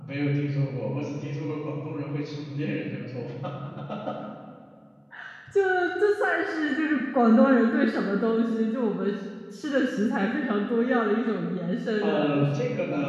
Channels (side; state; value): both; identical; correlation 1.00